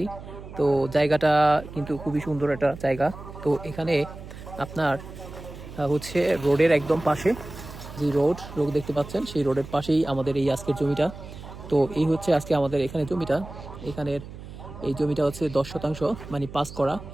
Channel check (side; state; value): right; noise; hum, 14 dB below the sound